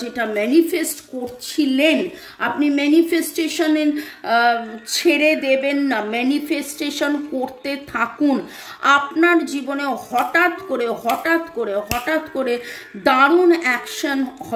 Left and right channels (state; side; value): identical; both; correlation 1.00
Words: যেটা ম্যানিফেস্ট করছিলেন, আপনি ম্যানিফেস্টেশনে ছেড়ে দেবেন না, ম্যানিফেস্টেশন করতে থাকুন। আপনার জীবনে হঠাৎ করে দারুণ